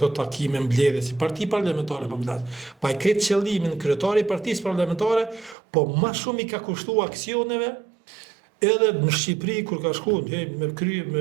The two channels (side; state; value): left; drops out; at 5.6 s